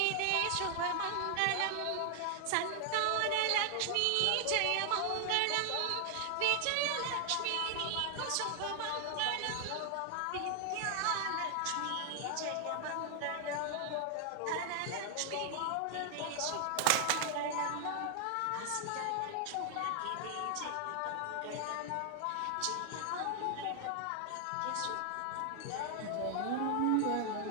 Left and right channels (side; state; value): both; different; correlation 0.00